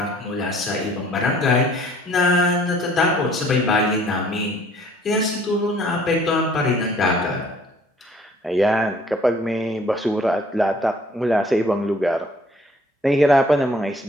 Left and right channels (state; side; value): normal; both; correlation 0.57